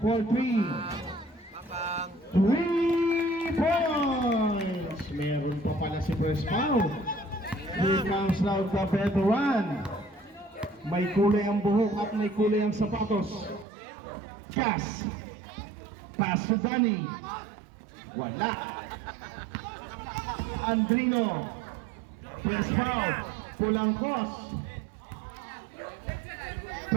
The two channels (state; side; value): drops out; left; at 13.7 s